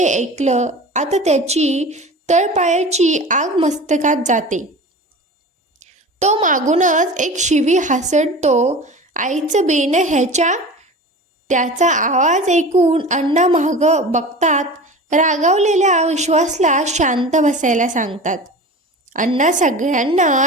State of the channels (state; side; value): normal; both; correlation 0.35